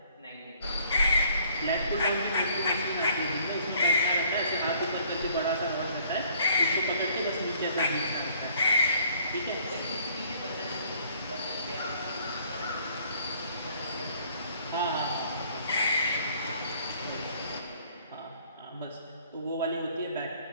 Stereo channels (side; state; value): both; inverted; correlation -0.61